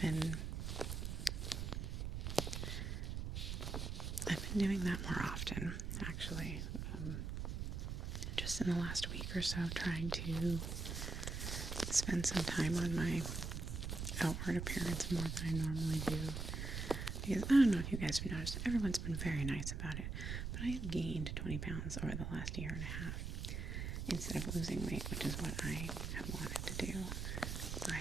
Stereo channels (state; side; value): noise; right; rumble, 3 dB below the sound